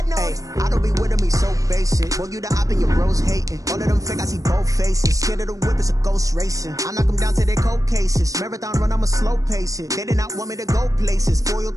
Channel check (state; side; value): late; left; 0.16 ms